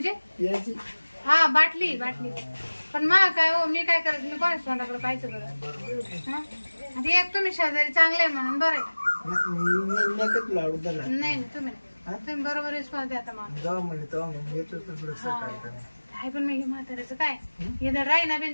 यायची हा बाटली पण मा काय हो मी काय करायचं मी कोणाच तोंडाकडे पाहायचं बरं आता एक तुम्ही शेजारी चांगले म्हणून बरं नाही तुम्ही बरोबर रिस्पॉन्स द्या आता काय पण मी म्हाताऱ्याचं काय हे तर राही ना बिन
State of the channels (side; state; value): both; inverted; correlation -1.00